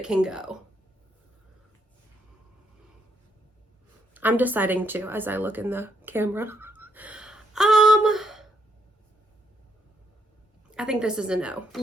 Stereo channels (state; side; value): normal; both; correlation 0.74